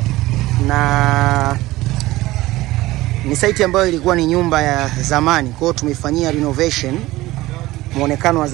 na ni site ambayo ilikuwa ni nyumba ya zamani. Kwa hiyo tumefanyia renovation. Muonekano wa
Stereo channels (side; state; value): left; quieter; 18.0 dB